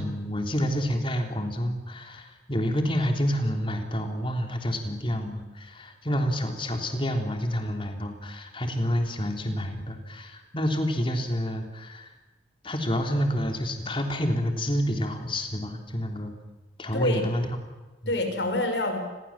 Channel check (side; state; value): both; normal; correlation 0.74